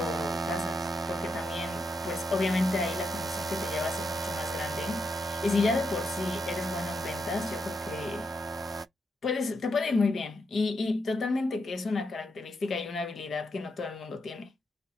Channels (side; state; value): both; normal; correlation 0.82